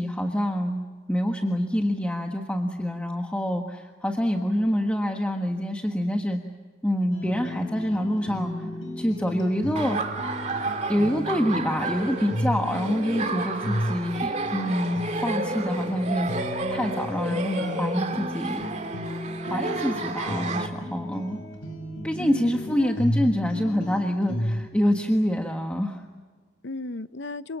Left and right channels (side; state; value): both; normal; correlation 0.81